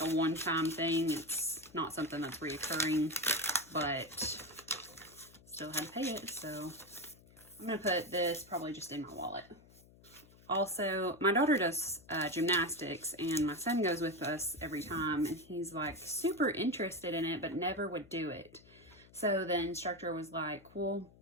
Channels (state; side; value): noise; left; hum, 24 dB below the sound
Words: a one-time thing. It's not something that's reoccurring, but still had to pay it. So I'm going to put this probably just in my wallet. Also, my daughter does gymnastics, and my son goes with us every time, and he's like super interested in it, but never would do it. So the instructor was like, well,